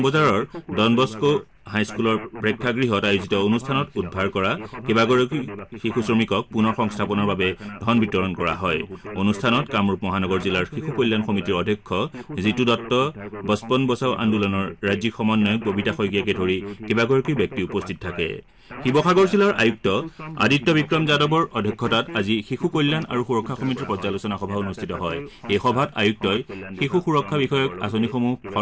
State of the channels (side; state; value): both; identical; correlation 1.00